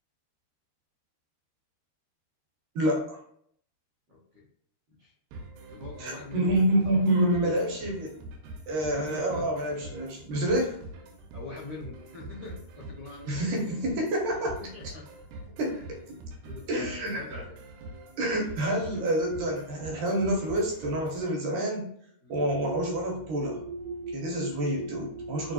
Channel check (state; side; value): late; left; 13 ms